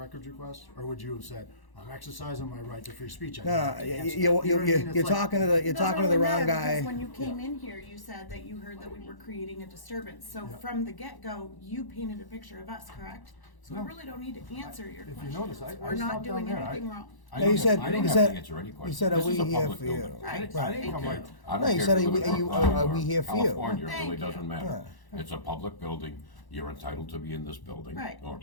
request? Or would you have said, I'm exercising my right to free speech? I don't have to answer." You know what I mean? It's You're like- talking to the It doesn't wrong really matter, guy. because when you came in here, you said that you heard that we were creating a disturbance. So from the get-go, you painted a picture of us, correct? So we really don't need to answer your If you questions. notice, I We're not stopped down doing there. anything wrong. I No, you don't said have- I don't you have said to answer any you questions. said, are This we is a here public for you? building. Right. I didn't come Okay. right. I No, don't you care said, if are you we- live in are Brookline or we here for you? California, it Thank really you. doesn't matter. It's a public building. You're entitled to be in this building. Right. Or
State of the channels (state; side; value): late; right; 1.0 ms